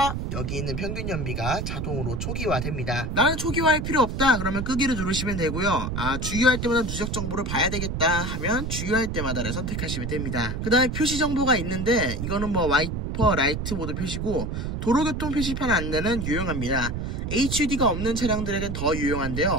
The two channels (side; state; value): right; noise; rumble, 3 dB below the sound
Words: 여기 있는 평균 연비가 자동으로 초기화됩니다. 나는 초기화할 필요 없다 그러면 끄기를 누르시면 되고요. 주유할 때마다 누적 정보를 봐야 되겠다 하면 주유할 때마다를 선택하시면 됩니다. 그 다음에 표시 정보가 있는데 이거는 뭐 와이퍼 라이트 모드 표시고 도로교통 표시판 안내는 유용합니다. HUD가 없는 차량들에겐 더